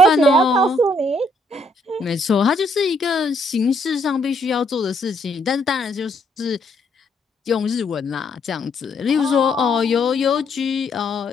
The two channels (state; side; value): normal; both; correlation 0.71